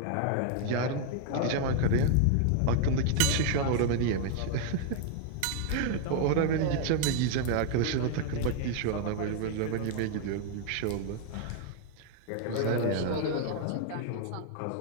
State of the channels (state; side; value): different; both; correlation 0.00